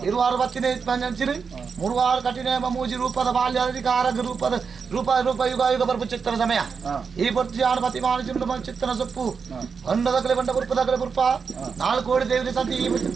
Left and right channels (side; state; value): left; quieter; 5.7 dB